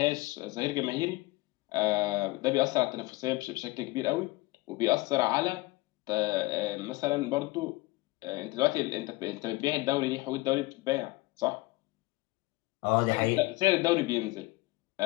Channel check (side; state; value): right; quieter; 21.7 dB